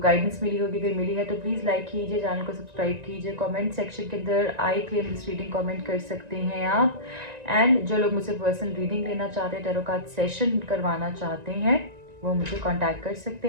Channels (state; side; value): late; left; 1.9 ms